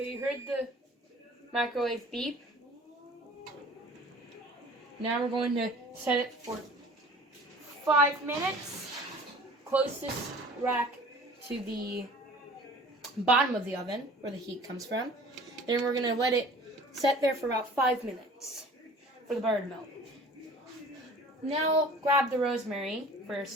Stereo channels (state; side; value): normal; both; correlation 0.46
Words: you heard the microwave beep. Now we're going to set it for 5 minutes. Closest rack to the bottom of the oven, where the heat comes from. Then we're going to let it set there for about 5 minutes for the butter to melt. Now grab the rosemary for your